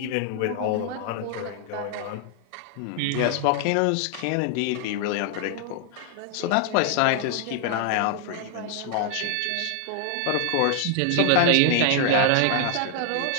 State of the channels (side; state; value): both; different; correlation 0.00